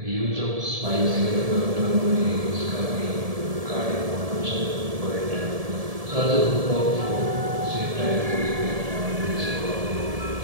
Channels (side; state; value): left; late; 1.7 ms